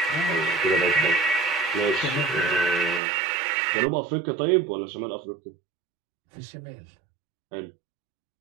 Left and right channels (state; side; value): drops out; left; at 3.0 s